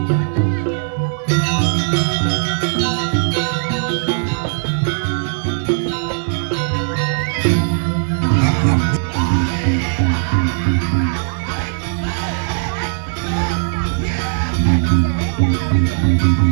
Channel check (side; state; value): left; silent; digital silence